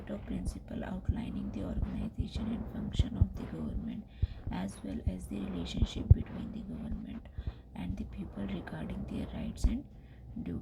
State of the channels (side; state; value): both; identical; correlation 1.00